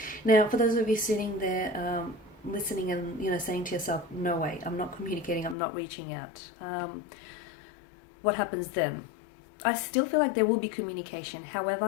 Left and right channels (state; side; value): drops out; right; at 5.6 s